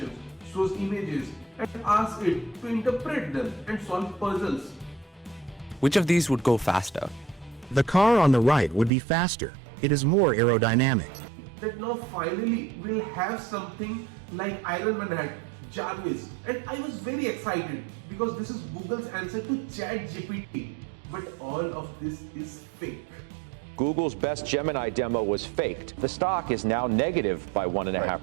shows images and asks it to interpret them and solve puzzles. Which of these would go faster? The car on the right would be faster. It is more aerodynamic. That now finally we'll have something like Iron Man had, Jarvis, and I was very excited because this is Google's answer to ChatGPT. But all of this is fake. Google's best Gemini demo was faked. The stock is now negative by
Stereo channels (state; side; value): drops out; left; at 8.9 s